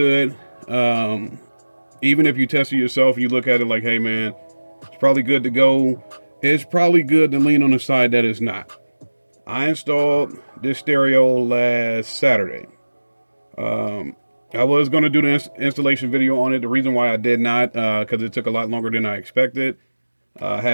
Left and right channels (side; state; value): both; inverted; correlation -1.00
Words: Even if you test it yourself, you look at it like, hey man, it's probably good to go. It's probably good to lean on the side that it's not. I installed this stereo last Saturday. I was going to do the installation video on it. The reason why I did not, because it took a lot longer than I expected.